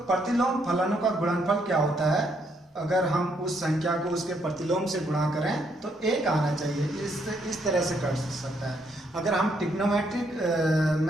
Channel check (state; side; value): normal; both; correlation 0.73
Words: प्रतिलोम फलनों का गुणनफल क्या होता है, अगर हम उस संख्या को उसके प्रतिलोम से गुणा करें तो एक आना चाहिए, इस तरह से कर सकता है। अगर हम ट्रिग्नोमेट्रिक